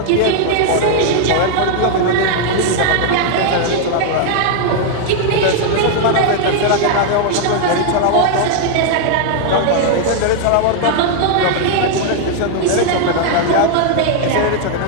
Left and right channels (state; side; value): different; both; correlation 0.00